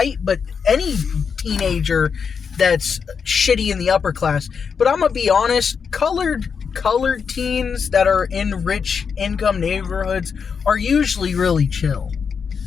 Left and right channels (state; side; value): quieter; right; 6.2 dB